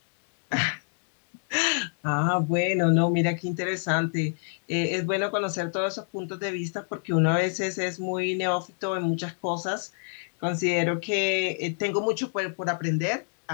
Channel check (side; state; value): right; silent; digital silence